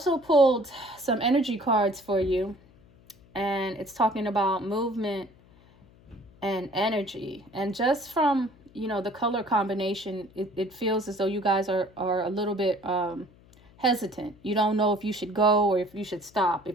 pulled some energy cards for you, and it's talking about movement and energy. And just from the color combination, it feels as though you guys are a little bit hesitant. You don't know if you should go or if you should stop,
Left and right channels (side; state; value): left; noise; hum, 27 dB below the sound